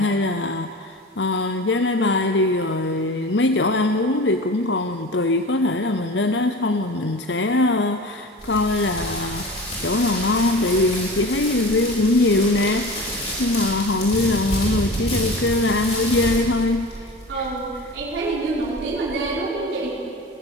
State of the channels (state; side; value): normal; both; correlation 0.34